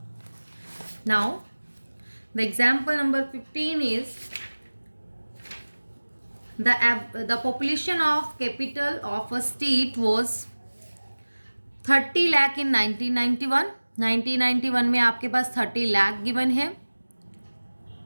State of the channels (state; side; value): inverted; both; correlation -1.00